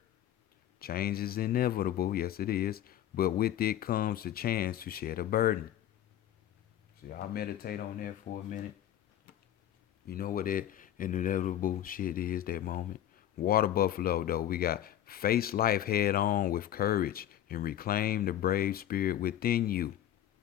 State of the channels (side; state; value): right; quieter; 11.6 dB